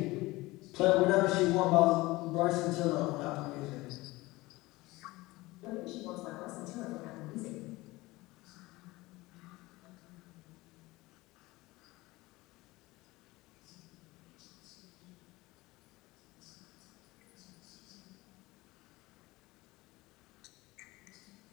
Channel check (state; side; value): quieter; right; 20.5 dB